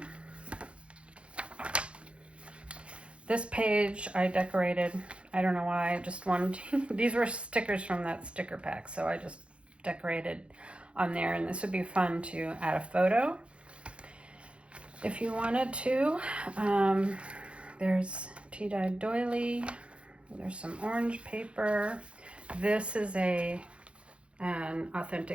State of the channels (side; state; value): left; late; 0.059 ms